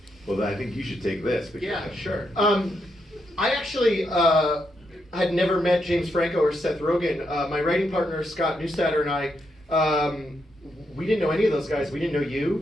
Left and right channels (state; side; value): normal; both; correlation 0.81